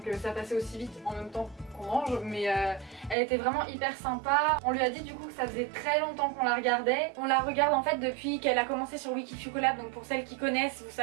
ça passait aussi vite en même temps qu'on mange, mais elle était vraiment hyper sympa. On lui a dit du coup que ça faisait très longtemps qu'on la regardait. On la regarde en fait depuis qu'elle a commencé sur Wikifucolab, donc pour celles qui connaissent vous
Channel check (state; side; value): drops out; left; at 3.2 s